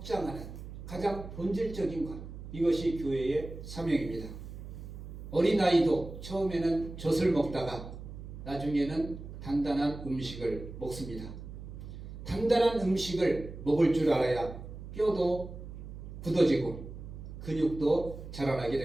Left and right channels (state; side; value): noise; right; hum, 11 dB below the sound